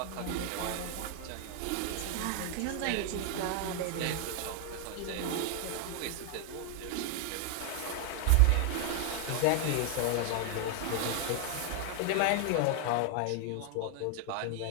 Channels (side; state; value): both; different; correlation 0.00